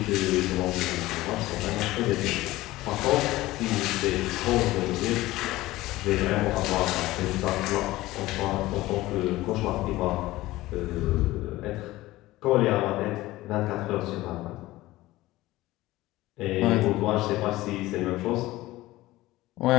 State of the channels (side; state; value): right; quieter; 17.7 dB